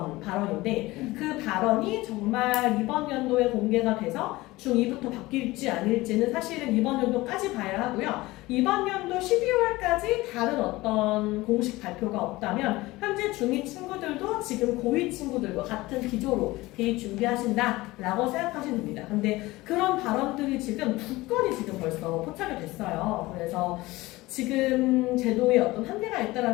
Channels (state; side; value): quieter; right; 19.7 dB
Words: 발언인데 그 발언이 정말 이번 연도에 공개가 돼서 중2부터 바뀔지 아닐지는 사실은 이번 연도까지 봐야 하고요. 이번 연도 12월까지 다른 어떤 공식 발표가 없다면 현재 중2 친구들도 지금 고2 친구들과 같은 기조로 대입 준비하신다라고 생각하시면 됩니다. 근데 그런 발언들이 지금 2건이 지금 벌써 포착이 됐어요. 그래서 지금 제도에 어떤 한계가